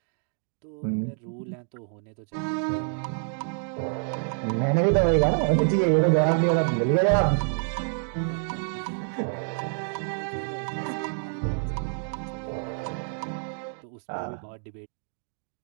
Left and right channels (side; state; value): left; silent; 59 dB below the other